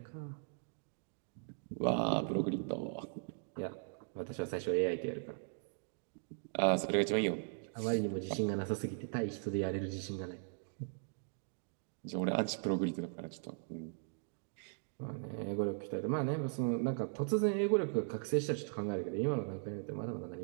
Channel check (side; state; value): left; silent; digital silence